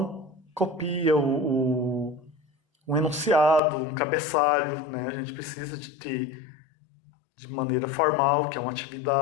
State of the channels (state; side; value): drops out; right; at 3.6 s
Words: copia um enunciado, um cabeçalho, né? A gente precisa de ter de maneira formal, que é uma